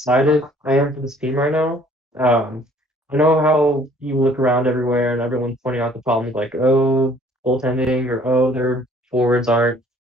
I am for this team right now. I know how you look around everywhere and everyone's pointing out the problems like, oh, goaltending or oh, their forwards aren't,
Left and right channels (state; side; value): normal; both; correlation 0.57